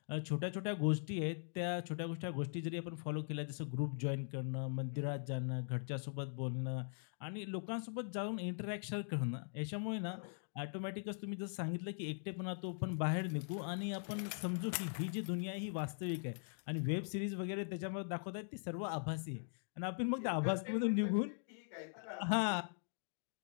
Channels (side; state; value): right; silent; digital silence